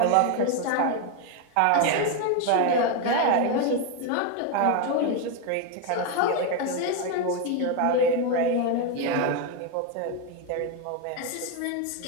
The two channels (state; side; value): different; both; correlation 0.02